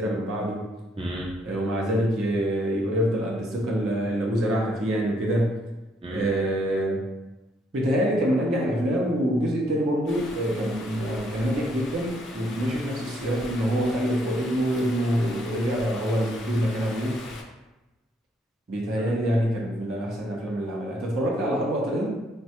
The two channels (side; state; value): both; normal; correlation 0.71